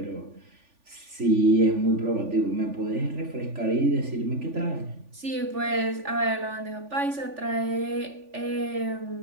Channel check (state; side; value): late; left; 3.5 ms